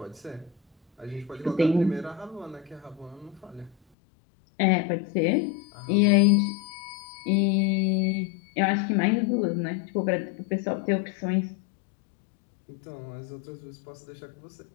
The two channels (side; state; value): right; drops out; at 3.8 s